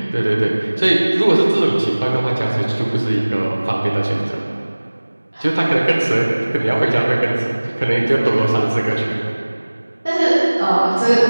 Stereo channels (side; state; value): both; inverted; correlation -1.00